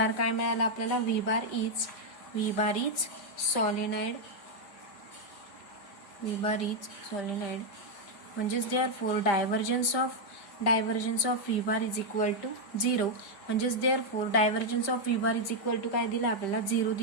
काय मिळाला आपल्याला व्ही बार इज सॉलिनाइड. म्हणजेच therefore divergence of v bar is equal to 0. म्हणजेच therefore divergence of v bar is equal to काय दिलं आपल्याला 0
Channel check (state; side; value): late; right; 5.0 ms